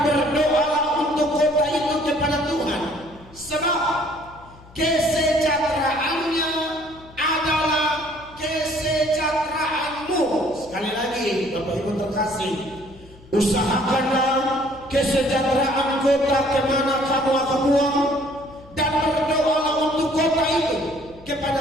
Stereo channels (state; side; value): noise; left; hum, 23 dB below the sound